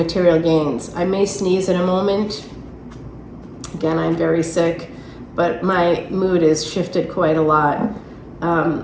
gains. I may sneeze in a moment. Again, I'm very sick, but my mood has shifted quite a lot,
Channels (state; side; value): identical; both; correlation 1.00